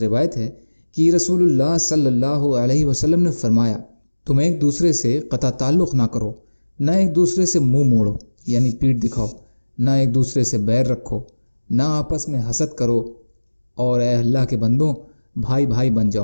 روایت ہے کہ رسول اللہ صلی اللہ علیہ وسلم نے فرمایا، تم ایک دوسرے سے قطع تعلق نہ کرو، نہ ایک دوسرے سے منہ موڑو یعنی پیٹھ دکھاؤ، نہ ایک دوسرے سے بیر رکھو، نہ آپس میں حسد کرو، اور اے اللہ کے بندوں، بھائی بھائی بن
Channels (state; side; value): inverted; both; correlation -1.00